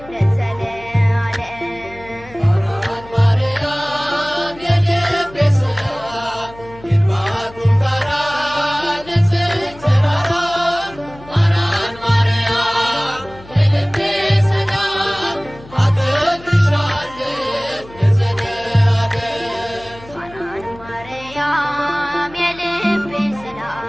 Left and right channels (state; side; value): noise; left; hum, 20 dB below the sound